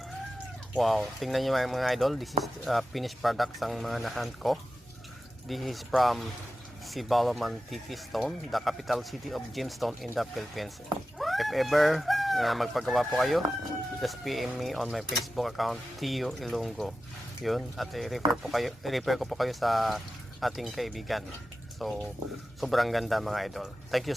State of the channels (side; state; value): both; normal; correlation 0.93